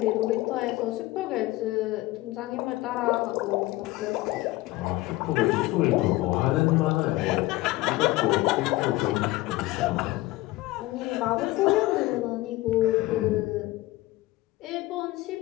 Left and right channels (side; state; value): right; quieter; 18.7 dB